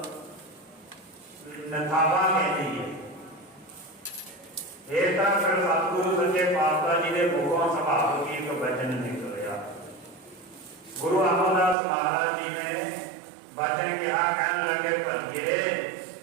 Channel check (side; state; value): left; drops out; at 11.8 s